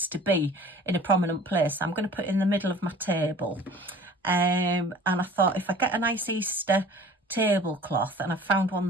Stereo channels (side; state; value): both; normal; correlation 0.46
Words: to be in a prominent place. I'm going to put it in the middle of my table, and I thought if I get a nice Easter tablecloth, and I found one